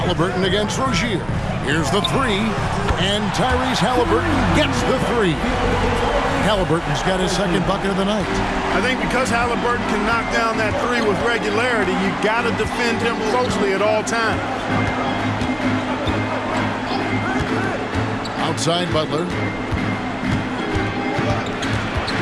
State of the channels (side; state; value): both; identical; correlation 1.00